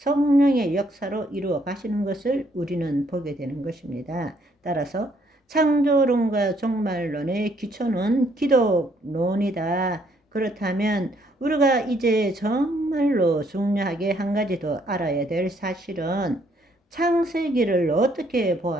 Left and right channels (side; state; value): both; normal; correlation 0.68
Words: 역사로 이루어 가시는 것을 우리는 보게 되는 것입니다. 따라서 창조론과 종말론의 기초는 기독론이다. 그렇다면 우리가 이제 정말로 중요하게 한 가지 더 알아야 될 사실은 창세기를 어떻게